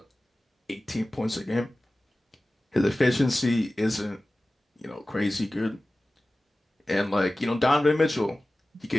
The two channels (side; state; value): both; normal; correlation 0.97